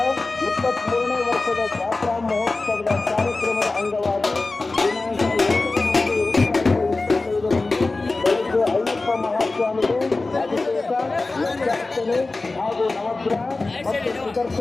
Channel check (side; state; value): right; quieter; 3.4 dB